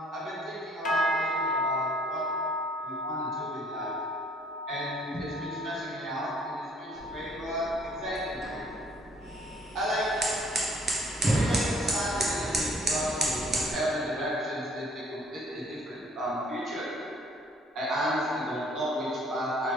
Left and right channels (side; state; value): both; normal; correlation 0.59